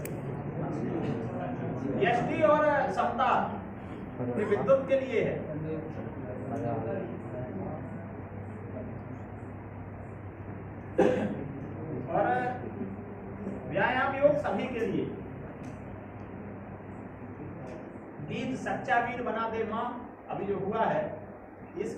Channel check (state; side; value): identical; both; correlation 1.00